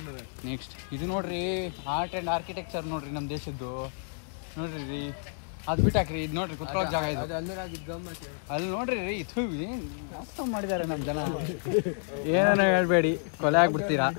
ನೆಕ್ಸ್ಟ್ ಇದು ನೋಡ್ರಿ, ಆರ್ಟ್ ಆ್ಯಂಡ್ ಆರ್ಕಿಟೆಕ್ಚರ್ ನೋಡ್ರಿ, ನಮ್ಮ ದೇಶದ್ದು. ನೋಡ್ರಿ ರೀ, ಅದು ಬಿಟ್ಟಾಕ್ರಿ. ಇದು ನೋಡ್ರಿ, ಕುತ್ಕೊಳ್ಳೋ ಜಾಗ ಇದು. ಅಲ್ಲಿ ನೋಡ್ರಿ ರೀ, ಇದು ಮಸ್ತ್ ಮಾಡಿದ್ದಾರೆ ನಮ್ಮ ಜನ. ಏನೋ ಹೇಳ್ಬೇಡಿ, ಕೊಲೆ ಆಗ್ಬಿಡ್ತೀರಾ.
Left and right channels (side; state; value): right; silent; 58 dB below the other